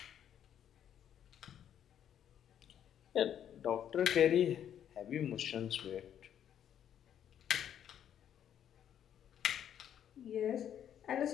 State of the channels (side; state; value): right; quieter; 9.8 dB